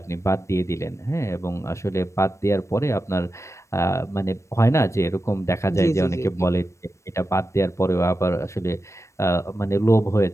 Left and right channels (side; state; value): right; late; 0.14 ms